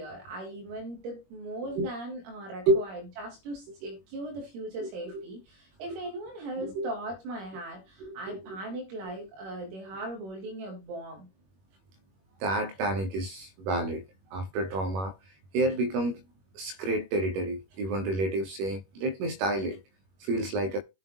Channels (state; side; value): late; left; 21 ms